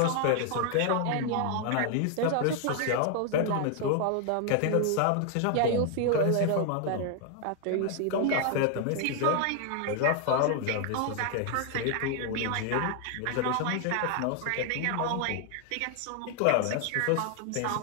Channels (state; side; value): different; both; correlation 0.00